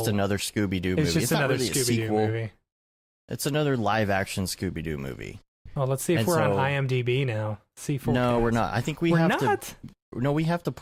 another Scooby-Doo movie. It's just another not really Scooby-Doo movie. It's another live-action Scooby-Doo movie. Well, let's see if we're on IMDb now. C4. No, we're not. I think we we're have not? to. No, we have to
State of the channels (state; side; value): identical; both; correlation 1.00